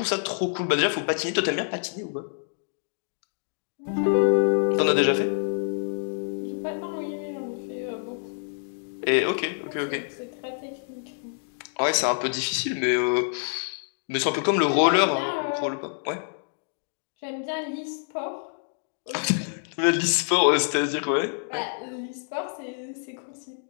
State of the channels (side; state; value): right; silent; digital silence